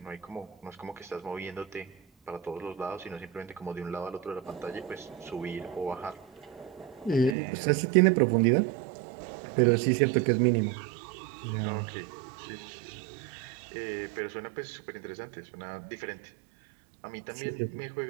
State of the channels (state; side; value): drops out; left; at 7.4 s